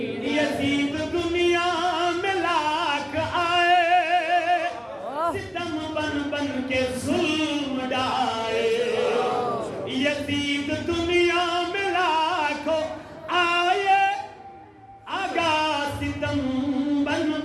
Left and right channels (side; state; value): both; identical; correlation 1.00